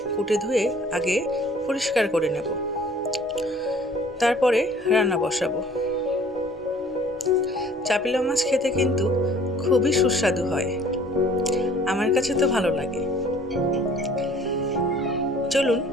কুটে ধুয়ে আগে পরিষ্কার করে নেব, তারপরে রান্না বসাবো। চাপিলা মাছ খেতে কিন্তু খুবই সুস্বাদু হয়, আমার কাছে তো ভালো লাগে। চলুন,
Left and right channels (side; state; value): both; normal; correlation 0.53